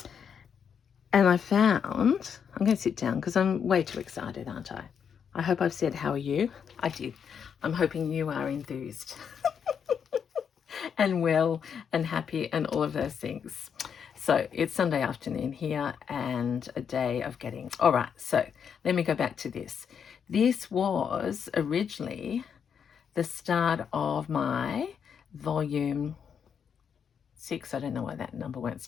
I found, I'm going to sit down because I'm way too excited, aren't I? I hope I've said, how are you? I did. I'm hoping you are enthused and well and happy and all of those things. So it's Sunday afternoon here and a day of getting, all right, so let me go back to this. This was originally the start of my volume 6, I don't know why that number won't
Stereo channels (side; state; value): right; quieter; 7.3 dB